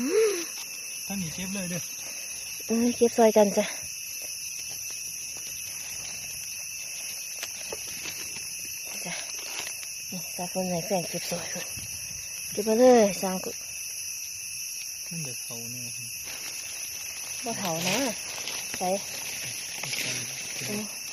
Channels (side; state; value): both; identical; correlation 1.00